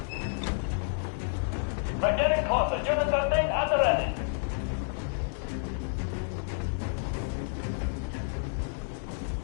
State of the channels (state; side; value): silent; right; digital silence